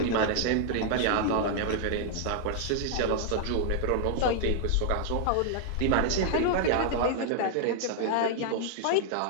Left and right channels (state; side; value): different; both; correlation 0.00